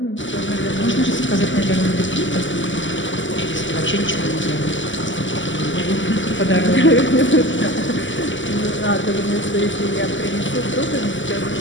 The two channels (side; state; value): right; late; 0.55 ms